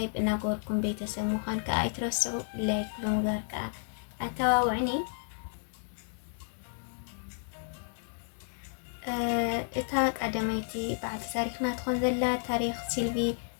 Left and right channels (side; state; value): right; silent; digital silence